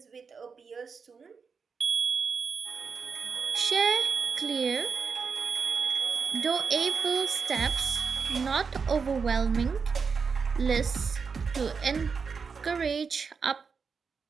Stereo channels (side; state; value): left; quieter; 5.5 dB